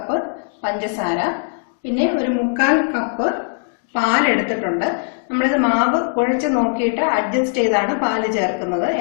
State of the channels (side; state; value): right; silent; digital silence